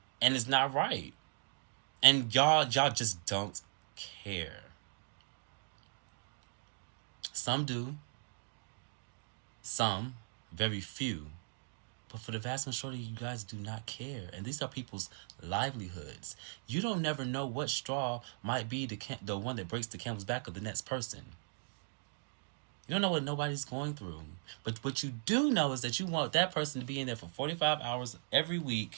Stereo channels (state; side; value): silent; left; digital silence